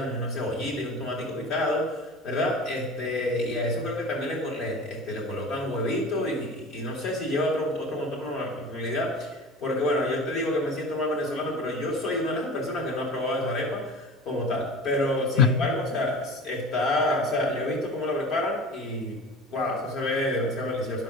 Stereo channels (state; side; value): normal; both; correlation 0.36